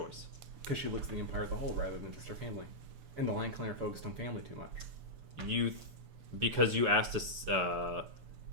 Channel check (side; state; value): left; late; 6.9 ms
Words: because she looks at the Empire as a whole rather than just her family. And the Lion Clan are focused on family too much. Because you asked us,